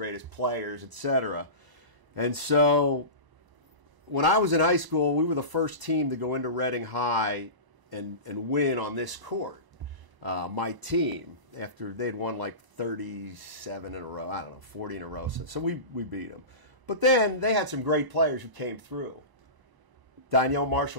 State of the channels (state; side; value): late; left; 1.0 ms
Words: players, etc. And so when I was in high school, we were the first team to go into Reading High and win on this court. My team, after they'd won like 37 in a row, 40 in a row. So we beat them. But then they had some great players who came through. Donyell